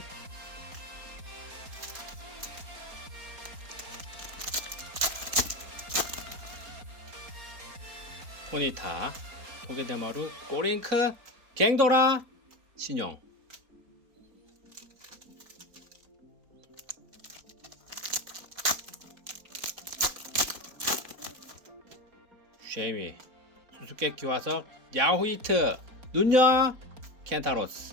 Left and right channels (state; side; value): late; left; 4.3 ms